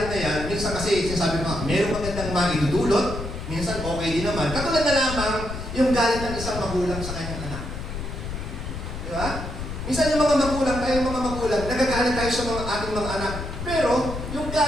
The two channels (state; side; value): noise; left; rumble, 7 dB below the sound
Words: na yan, minsan kasi sinasabi mo, meron magandang maidudulot, minsan okay din naman. Katulad na lamang yung galit ng isang magulang sa kanyang anak. Di ba? Minsan yung mga magulang, nagagalit tayo sa ating mga anak. Pero, yung